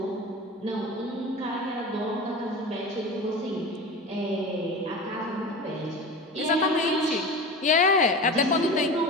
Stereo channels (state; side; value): normal; both; correlation 0.31